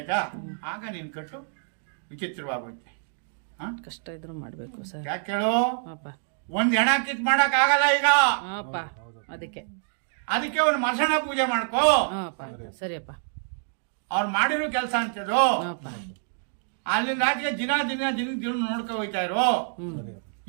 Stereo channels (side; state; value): left; silent; digital silence